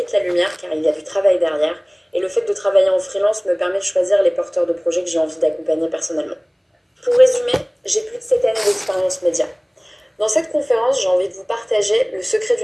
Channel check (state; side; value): identical; both; correlation 1.00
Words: la lumière car il y a du travail derrière Et le fait de travailler en freelance me permet de choisir les porteurs de projets que j'ai envie d'accompagner personnellement. Pour résumer, j'ai plus de 7 années d'expérience média. Dans cette conférence, j'ai envie de vous partager le secret